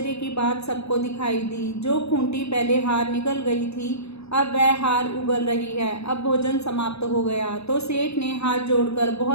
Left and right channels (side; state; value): right; late; 0.79 ms